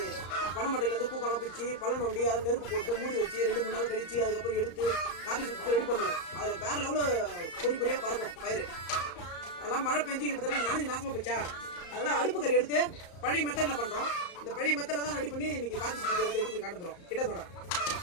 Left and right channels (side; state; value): right; late; 34 ms